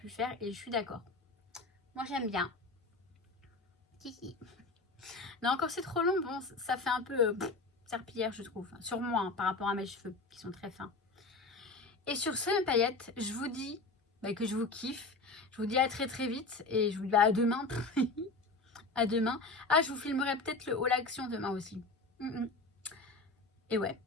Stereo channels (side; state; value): right; quieter; 3.4 dB